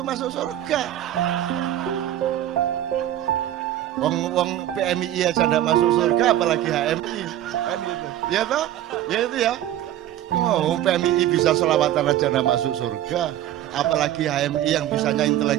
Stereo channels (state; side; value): quieter; left; 12.6 dB